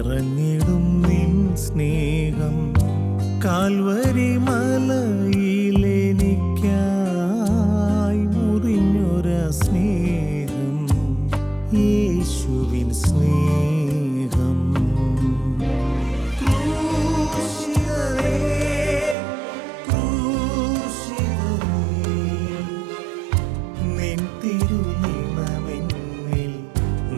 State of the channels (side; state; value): left; drops out; at 19.2 s